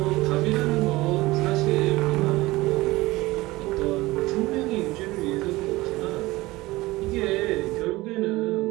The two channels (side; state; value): left; quieter; 19.7 dB